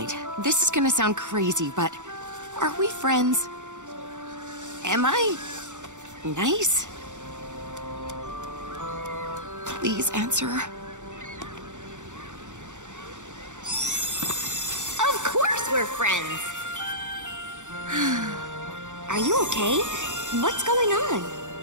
this is gonna sound crazy, but are we friends? Am I nice? Please answer. Of course we're friends! Are you okay? What's going on?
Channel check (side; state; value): left; late; 0.85 ms